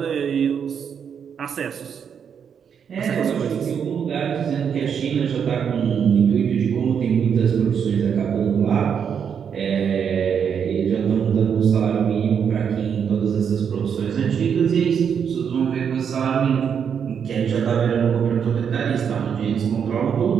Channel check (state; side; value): quieter; left; 7.4 dB